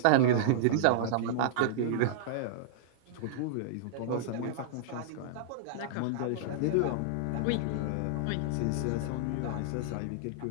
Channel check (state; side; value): different; both; correlation -0.02